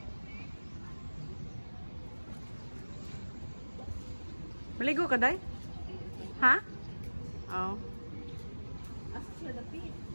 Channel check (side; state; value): both; inverted; correlation -1.00